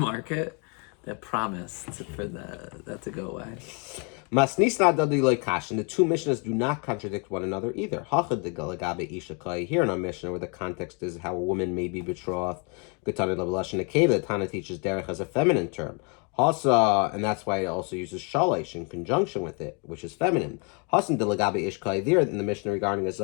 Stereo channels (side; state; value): right; quieter; 35.0 dB